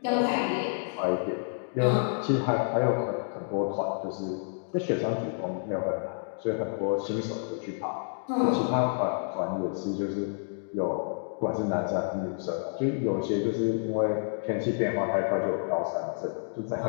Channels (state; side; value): silent; right; digital silence